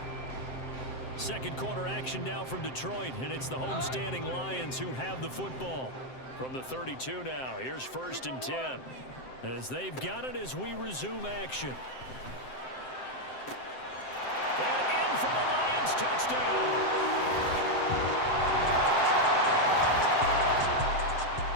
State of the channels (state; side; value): late; right; 7.7 ms